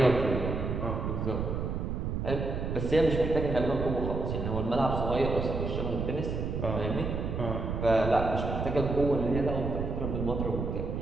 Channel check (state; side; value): noise; right; rumble, 2 dB below the sound